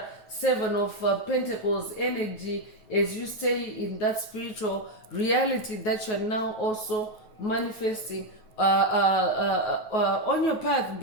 7 of Pentacles energy, as you stay in that spiritual reality that you're now also manifesting on your path,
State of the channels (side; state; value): right; late; 9.4 ms